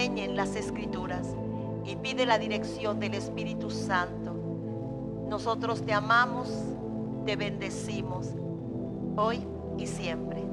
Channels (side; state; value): both; identical; correlation 1.00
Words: las Escrituras y pide la dirección del Espíritu Santo. Nosotros te amamos, te bendecimos hoy y siempre.